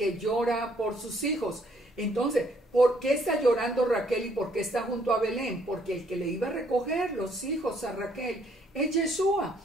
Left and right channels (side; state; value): both; normal; correlation 0.66